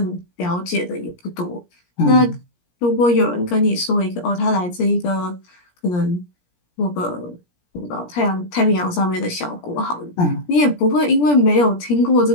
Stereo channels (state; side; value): late; right; 17 ms